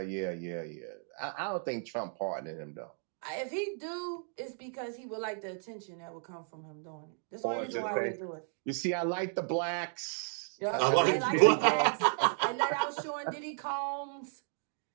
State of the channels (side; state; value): left; silent; 55 dB below the other